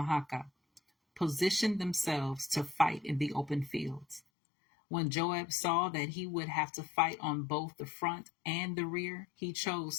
positioned themselves to fight in the open fields. When Joab saw that he would have to fight on both the front and the rear, he chose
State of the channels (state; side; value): drops out; right; at 4.2 s